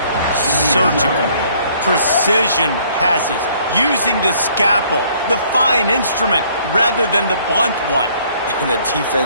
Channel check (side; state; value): both; inverted; correlation -0.61